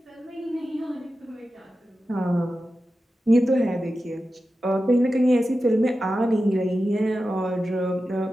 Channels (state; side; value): normal; both; correlation 0.92